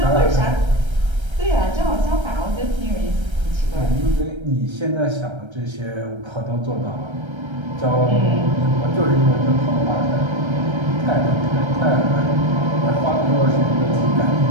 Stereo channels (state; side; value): late; left; 1.3 ms